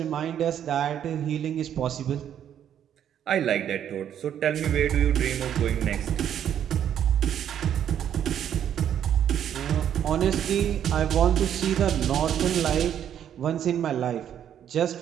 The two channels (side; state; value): left; quieter; 9.7 dB